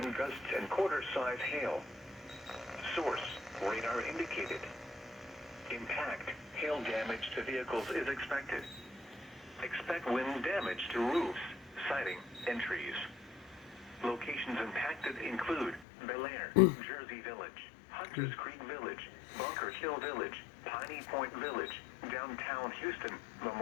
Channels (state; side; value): drops out; right; at 15.9 s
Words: gusts and quarter-size hail. Source, radar indicated. Impact, hail damage to vehicles is expected. Expect wind damage to roofs, siding, and trees. Locations impacted include Bel Air, Jersey Village, Hunters Creek Village, Bunker Hill Village, Piney Point Village, downtown Houston,